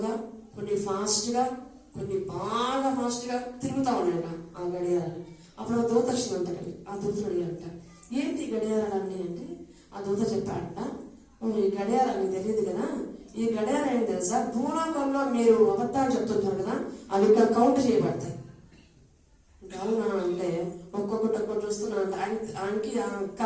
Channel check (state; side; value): identical; both; correlation 1.00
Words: కొన్ని ఫాస్ట్గా, కొన్ని బాగా ఫాస్ట్గా తిరుగుతూ ఉన్నాయంట ఆ గడియారాలు. అప్పుడు ఆ దూత వచ్చిందంట. ఆ దూతను అడిగారంట, ఏంటి గడియారాలు అన్నీ అంటే ఆ దూత చెప్పాడంట, ఈ గడియారాలు మీకు తెలియదు కదా, ఈ గడియారం ఏంటి తెలుసా, భూలోకంలో మీరు అబద్ధాలు చెప్తుంటారు కదా, అవి ఇక్కడ కౌంట్ చేయబడతాయి. అవునా అంటే ఒక్కొక్కటి చూస్తున్నాను. ఆయనకి